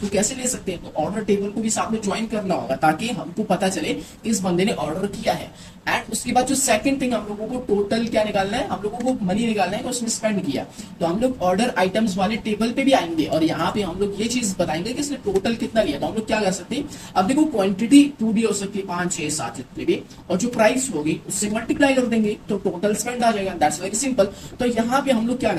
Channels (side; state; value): both; identical; correlation 1.00